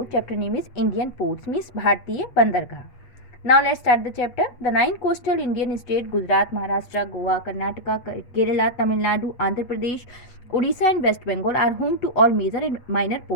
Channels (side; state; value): right; late; 8.3 ms